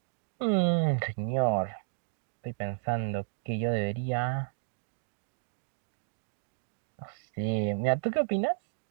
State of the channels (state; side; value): silent; left; digital silence